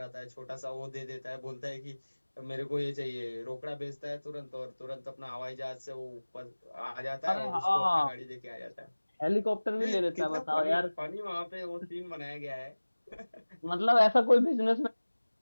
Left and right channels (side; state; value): both; inverted; correlation -1.00